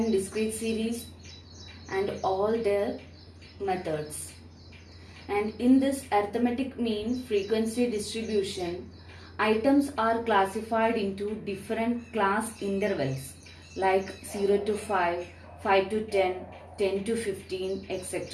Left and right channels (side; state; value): both; identical; correlation 1.00